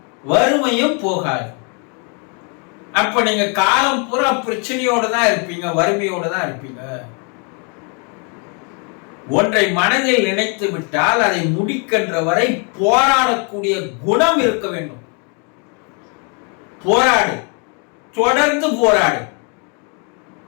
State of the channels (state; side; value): quieter; right; 36.5 dB